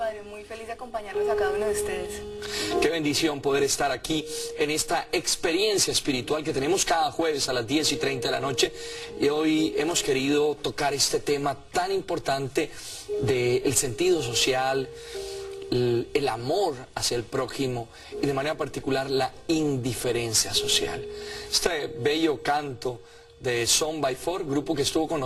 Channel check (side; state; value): both; identical; correlation 1.00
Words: Muy feliz de acompañarlos a cada uno de ustedes. Qué bendición poder estar aquí en esta experiencia espiritual que tenemos cada jueves a las 10:30 de la noche. Y hoy hemos querido tocar este tema tan importante del sentido social, el amor hacia el prójimo y de manera particular la indiferencia social. Este bello canto de Son by Four, grupo que estuvo con